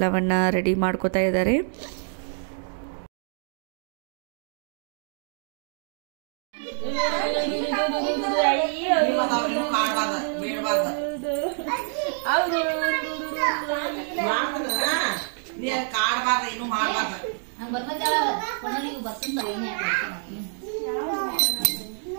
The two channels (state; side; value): silent; left; 61 dB below the other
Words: ರೆಡಿ ಮಾಡ್ಕೋತಾ ಇದ್ದಾರೆ.